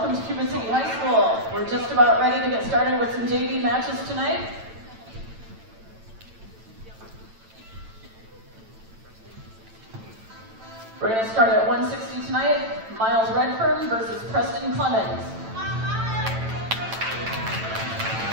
to Cuba City High School. We're just about ready to get started with some JV matches tonight. We're going to start at 160 tonight. Miles Redfern versus Preston Clemens.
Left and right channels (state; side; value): late; left; 9.0 ms